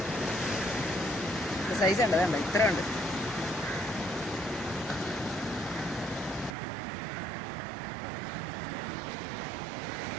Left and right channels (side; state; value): left; drops out; at 6.6 s